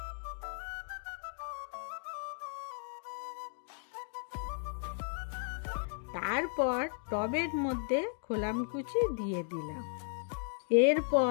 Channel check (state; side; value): silent; right; 54 dB below the other